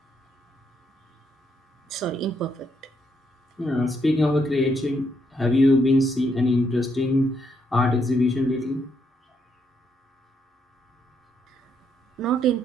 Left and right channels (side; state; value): both; normal; correlation 0.76